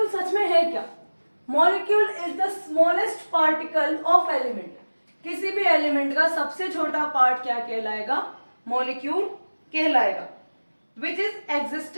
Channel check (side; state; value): both; inverted; correlation -1.00